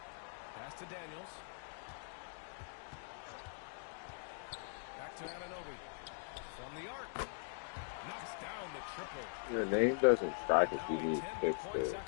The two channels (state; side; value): silent; right; digital silence